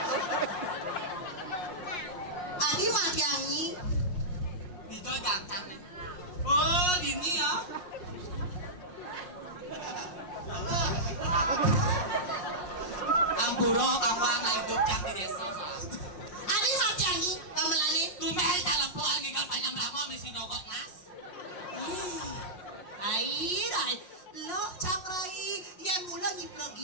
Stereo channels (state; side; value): late; right; 5.6 ms